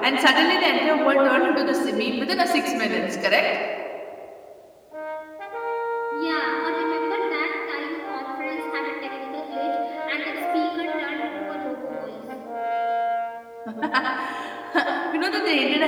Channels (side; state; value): both; identical; correlation 1.00